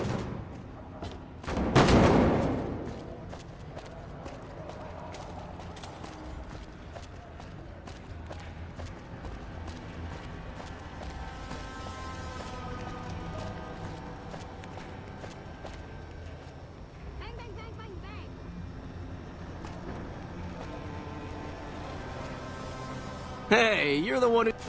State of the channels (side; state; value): both; identical; correlation 1.00